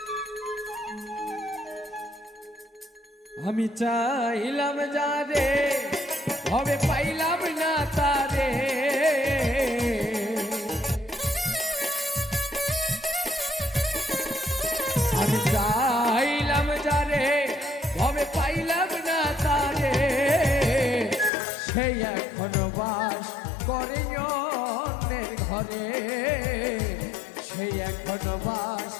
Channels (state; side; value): drops out; right; at 21.3 s